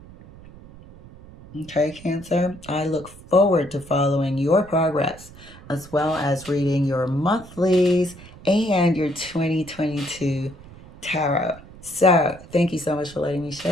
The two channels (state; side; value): noise; right; rumble, 19 dB below the sound